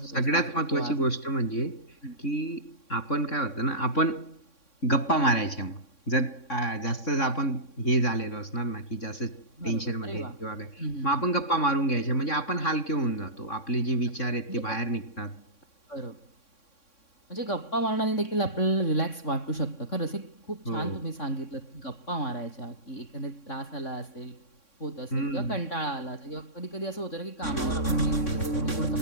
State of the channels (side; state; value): right; late; 3.6 ms